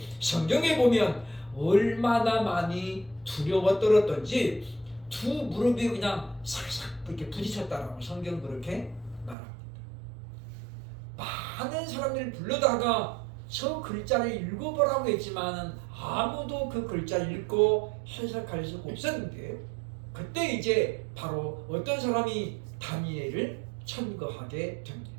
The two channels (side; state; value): left; drops out; at 9.3 s